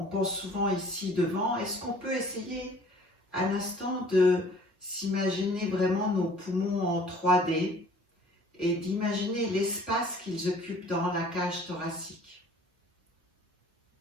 ici devant. Est-ce qu'on peut essayer un instant de s'imaginer vraiment nos poumons en 3D et d'imaginer l'espace qu'ils occupent dans la cage thoracique?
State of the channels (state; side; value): normal; both; correlation 0.52